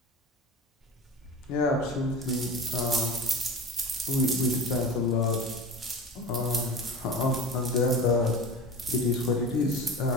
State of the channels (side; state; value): both; normal; correlation 0.33